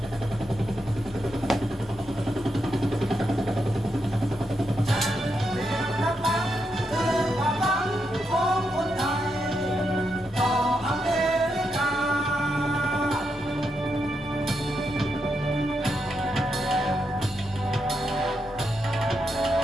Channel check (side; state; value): both; normal; correlation 0.83